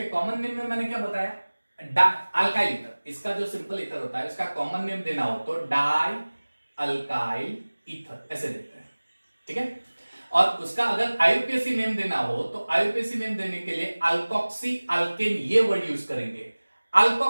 कॉमन नेम में मैंने क्या बताया? Alkyl ether. इसका जो सिंपल ईथर होता है, इसका कॉमन नेम देना हो तो डाई अल्काइल ईथर ऐसे देते हैं. ठीक है, और उसका अगर आईयूपीएसी नेम देना हो तो आईयूपीएसी नेम देने के लिए अल्कोक्सी अल्केन ये वर्ड यूज करेंगे.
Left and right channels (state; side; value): inverted; both; correlation -1.00